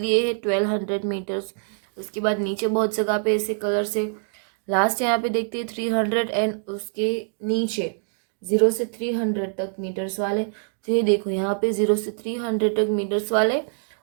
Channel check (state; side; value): silent; left; 62 dB below the other